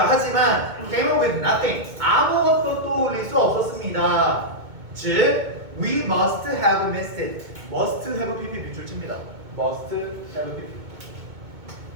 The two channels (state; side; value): late; left; 2.2 ms